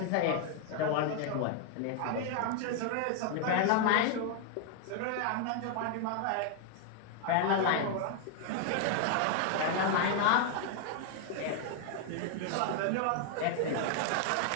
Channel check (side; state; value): both; different; correlation 0.00